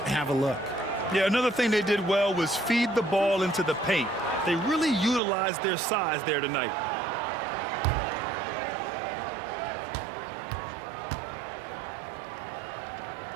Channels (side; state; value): left; drops out; at 5.2 s